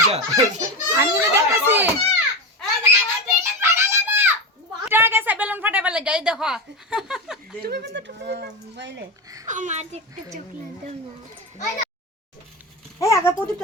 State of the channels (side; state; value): both; normal; correlation 0.18